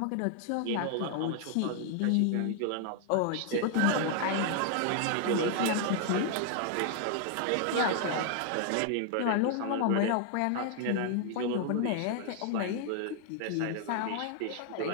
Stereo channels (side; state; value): both; different; correlation 0.00